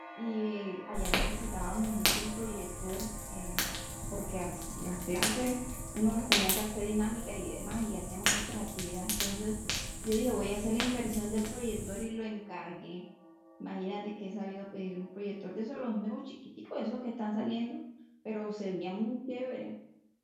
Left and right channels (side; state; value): both; identical; correlation 1.00